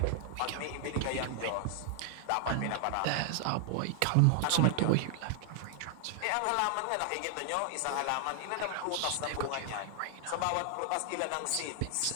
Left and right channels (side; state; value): both; different; correlation 0.00